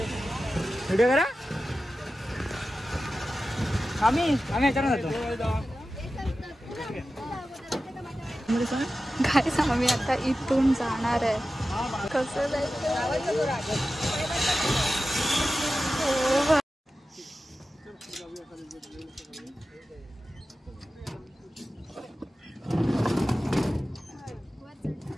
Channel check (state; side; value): normal; both; correlation 0.94